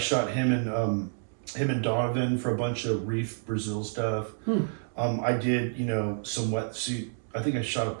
him and Donovan for a bunch of Reef Brazil stuff. I did, some wetsuit. I think I shot a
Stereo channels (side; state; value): left; silent; digital silence